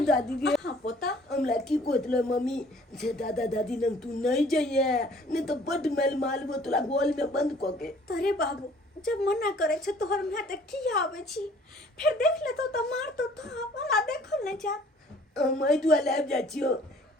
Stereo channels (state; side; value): normal; both; correlation 0.55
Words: दादी गे हां पोता हमला की कोतले मम्मी से दादा दादी नंग तू नहीं जाइए नहीं तो बड मेल मालबो तोला गोल में बंद क के तोरे बाबू जब मना करे छ तोहर मैं त की आवे छी फिर देख ले तो मार तो हमरा देखल नहीं जा मैं दुआ लाब जा छियो